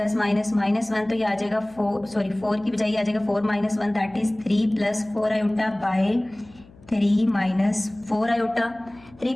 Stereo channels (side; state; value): left; noise; hum, 25 dB below the sound